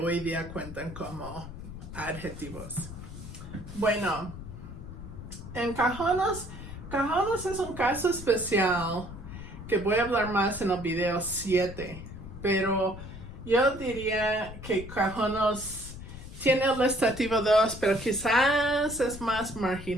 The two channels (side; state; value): left; noise; rumble, 12 dB below the sound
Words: día cuentan como adjetivos. Bueno, en Cajonos es un caso especial que voy a hablar más en el video 7, pero yo diría que Cajonos tiene el estativo 2, pero quizás es más